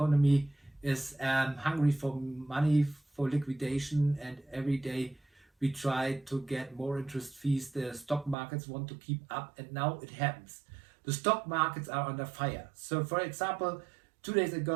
is hungry for money, for liquidation, and every day we try to get more interest fees. The stock markets want to keep up, and now it happens. The stock markets are under fire. So, for example, 2 days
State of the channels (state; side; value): drops out; left; at 8.3 s